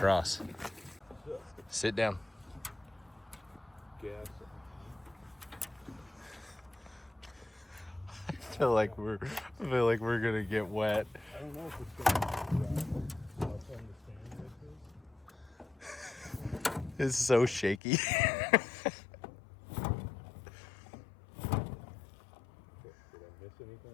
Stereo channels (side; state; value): right; drops out; at 17.8 s